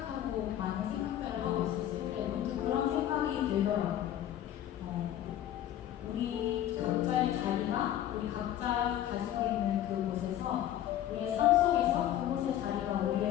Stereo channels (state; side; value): quieter; right; 11.9 dB